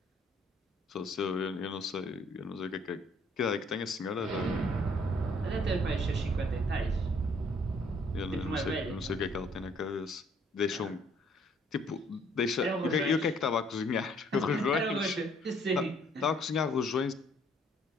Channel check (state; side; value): normal; both; correlation 0.63